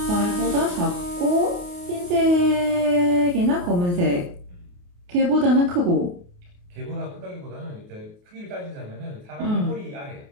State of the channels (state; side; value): late; left; 28 ms